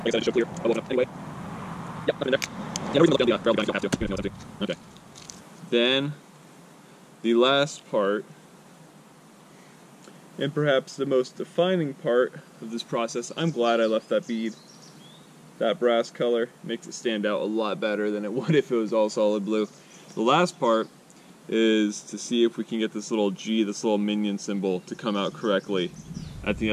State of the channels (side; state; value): both; identical; correlation 1.00